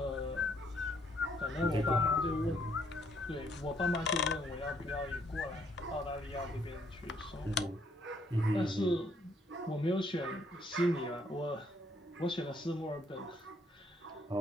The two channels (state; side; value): normal; both; correlation 0.68